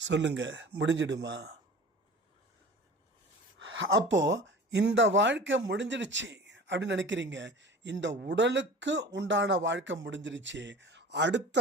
சொல்லுங்க, முடிஞ்சிடுமா? அப்போ இந்த வாழ்க்கை முடிஞ்சிடுச்சு அப்படின்னு நினைக்கிறீங்க, இந்த உடலுக்கு உண்டான வாழ்க்கை முடிஞ்சிடுச்சு,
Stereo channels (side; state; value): both; normal; correlation 0.40